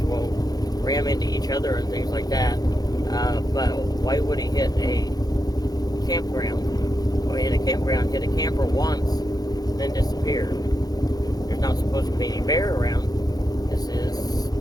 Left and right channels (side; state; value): right; late; 0.19 ms